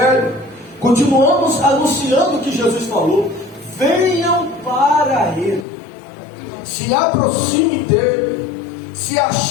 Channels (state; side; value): drops out; right; at 5.7 s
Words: continuamos anunciando o que Jesus falou: venham para Ele, se aproxime dele, se